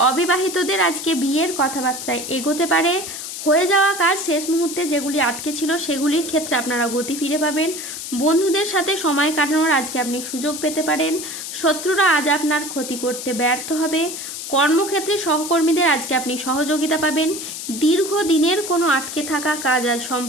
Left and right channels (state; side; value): noise; left; hiss, 8 dB below the sound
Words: অবিবাহিতদের আজকে বিয়ের কথাবার্তায় এগোতে পারে। হয়ে যাওয়া কাজ শেষ মুহূর্তে যেগুলি আটকে ছিল সেগুলির ক্ষেত্রে আপনারা গতি ফিরে পাবেন। বন্ধুদের সাথে সময় কাটানোর আজকে আপনি সুযোগ পেতে পারেন। শত্রুরা আজ আপনার ক্ষতি করতে ব্যর্থ হবে। কর্মক্ষেত্রে সহকর্মীদের আজকে আপনি সহযোগিতা পাবেন। দীর্ঘদিনের কোনো আটকে থাকা কাজ আজ